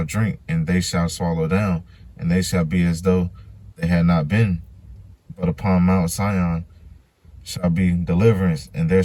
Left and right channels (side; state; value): both; identical; correlation 1.00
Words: drink, and they shall swallow down, and they shall be as though they had not been. But upon Mount Sion shall be deliverance, and there